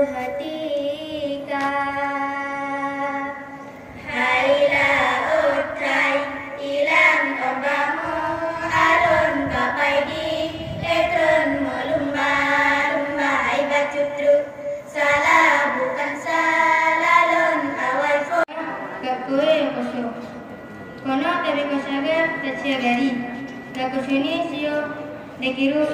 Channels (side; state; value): both; identical; correlation 1.00